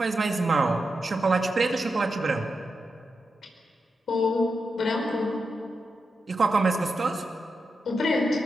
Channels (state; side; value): normal; both; correlation 0.87